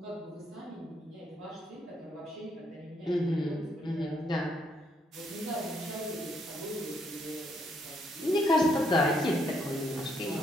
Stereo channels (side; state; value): both; normal; correlation 0.73